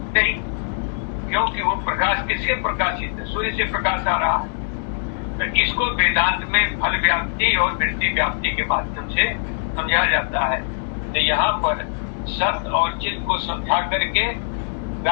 नहीं, क्योंकि वो प्रकाश किससे प्रकाशित है? सूर्य से प्रकाश आ रहा है। तो इसको वेदांत में फल व्याप्ति और वृत्ति व्याप्ति के माध्यम से समझा जाता है। तो यहाँ पर सत और चित्त को समझा करके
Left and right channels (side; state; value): right; silent; 64 dB below the other